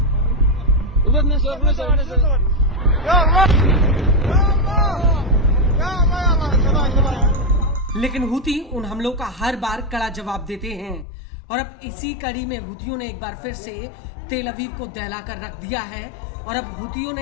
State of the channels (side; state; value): right; drops out; at 11.1 s